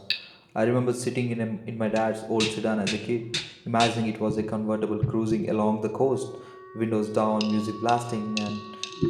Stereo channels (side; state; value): both; identical; correlation 1.00